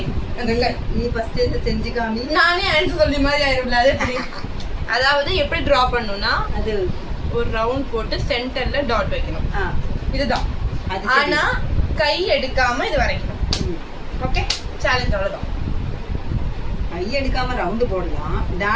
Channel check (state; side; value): identical; both; correlation 1.00